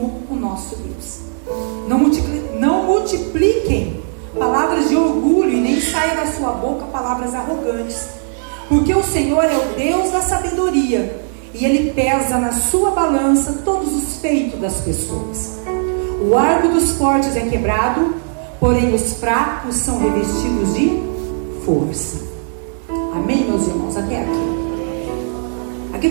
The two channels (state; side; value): silent; left; digital silence